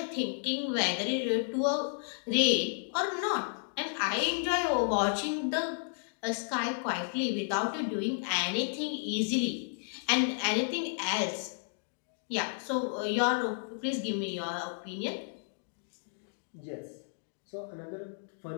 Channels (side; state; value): right; silent; digital silence